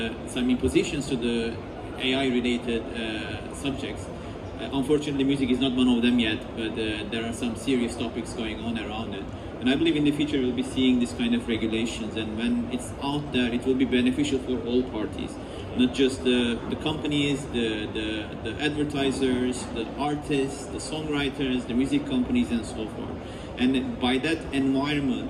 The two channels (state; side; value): identical; both; correlation 1.00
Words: some impositions to the AI-related subjects. Unfortunately, music is not one of them yet, but there are some serious topics going on around it. And I believe in the future we'll be seeing this kind of regulations, and when it's out there, it will be beneficial for all parties. Not just the companies, the advertisers, the artists, the songwriters, the music companies, and so forth. And by that